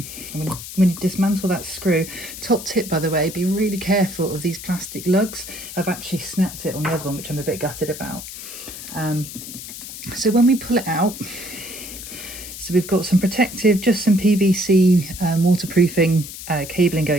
you dismantle that screw, top tip by the way, be really careful of these plastic lugs. I've actually snapped it on the other one, which I'm a bit gutted about. So when we pull it out, so we've got some protective, just some PVC waterproofing cabling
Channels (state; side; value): noise; left; hiss, 11 dB below the sound